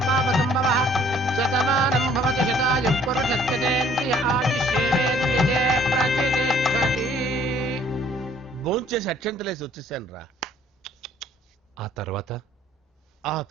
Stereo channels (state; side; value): normal; both; correlation 0.59